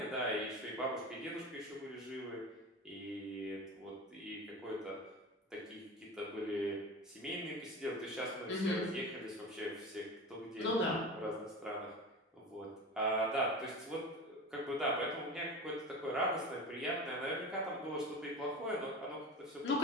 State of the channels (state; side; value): normal; both; correlation 0.29